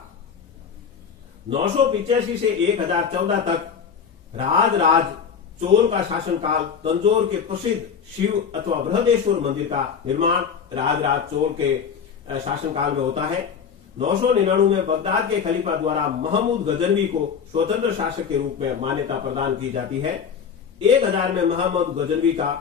985 से 1014 तक राज चोल का शासनकाल तंजौर के प्रसिद्ध शिव अथवा बृहदेश्वर मंदिर का निर्माण राज चोल के शासनकाल में होता है। 999 में बगदाद के खलीफा द्वारा महमूद गजनवी को स्वतंत्र शासक के रूप में मान्यता प्रदान की जाती है। 1000 में महमूद गजनवी का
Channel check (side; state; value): right; quieter; 6.8 dB